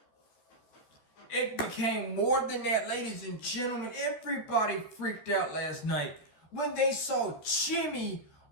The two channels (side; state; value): right; late; 13 ms